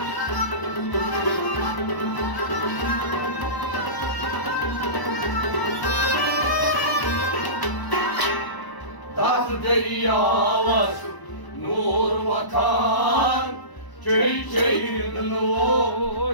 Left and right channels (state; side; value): late; right; 1.0 ms